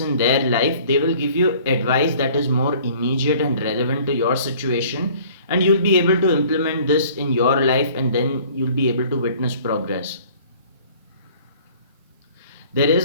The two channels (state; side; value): inverted; both; correlation -0.52